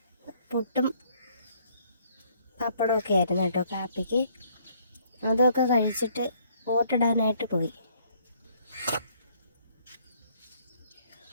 പുട്ടും പപ്പടമൊക്കെ ആയിരുന്നു കേട്ടോ കാപ്പിക്ക്. അതൊക്കെ കഴിച്ചിട്ട് ഓട്ടിടാനായിട്ട് പോയി.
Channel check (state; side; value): inverted; both; correlation -0.64